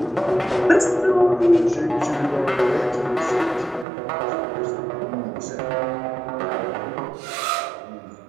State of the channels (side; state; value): left; drops out; at 3.9 s